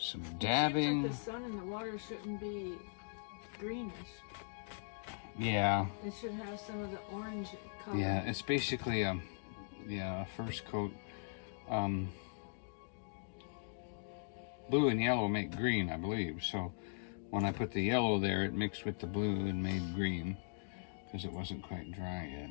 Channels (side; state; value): right; silent; digital silence